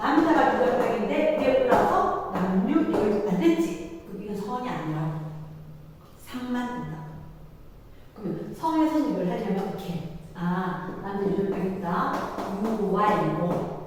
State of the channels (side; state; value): both; identical; correlation 1.00